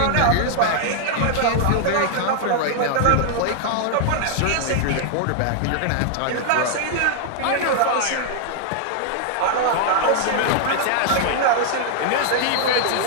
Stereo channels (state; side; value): different; both; correlation 0.00